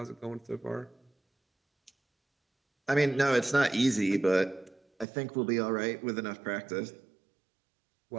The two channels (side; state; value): left; drops out; at 5.1 s